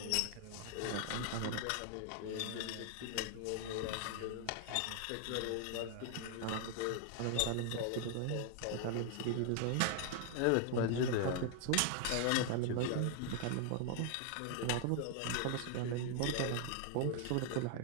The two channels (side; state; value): both; different; correlation 0.00